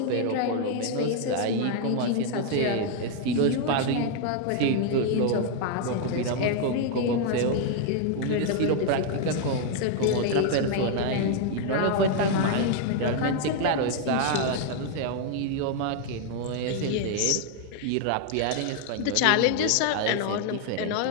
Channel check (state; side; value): different; both; correlation 0.00